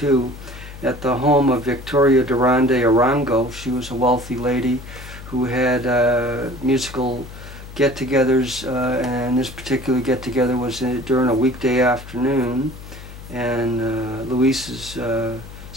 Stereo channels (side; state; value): left; noise; hum, 14 dB below the sound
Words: at the home of Victoria Durán de Arango. She was a wealthy lady who had musical get-togethers, and this particular get-together was during a weekday afternoon, and Luis's